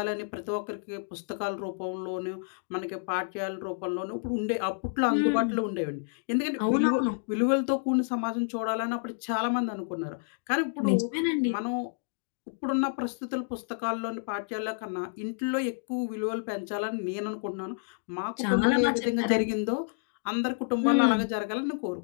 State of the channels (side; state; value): right; silent; digital silence